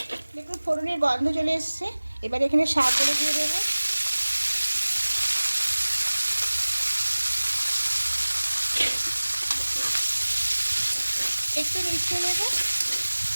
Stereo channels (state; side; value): inverted; both; correlation -1.00